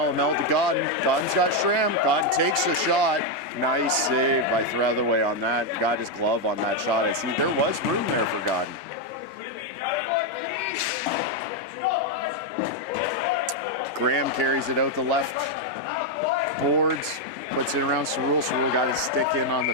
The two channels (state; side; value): normal; both; correlation 0.02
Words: to Godden. Godden's got Schramm. Godden takes the shot. Nice save by Throtherway on that. Got his glove on that shot. I see there was room there for Godden. Graham carries it out the left boards. Puts it around Cerul. Cerul got his stick in on the